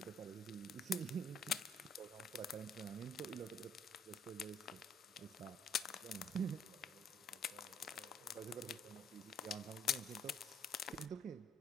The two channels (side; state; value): both; normal; correlation 0.64